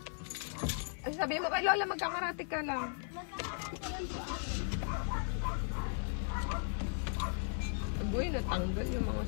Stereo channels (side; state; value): right; silent; 53 dB below the other